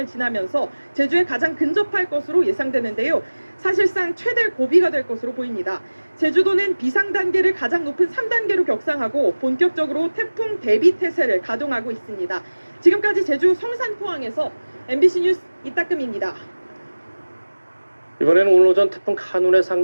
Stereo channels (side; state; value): both; inverted; correlation -1.00